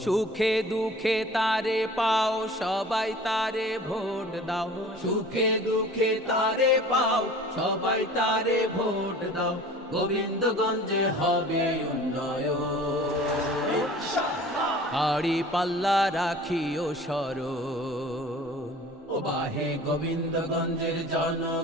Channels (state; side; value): normal; both; correlation 0.44